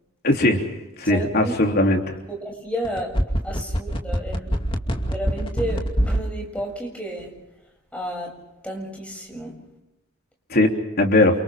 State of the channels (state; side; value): normal; both; correlation 0.51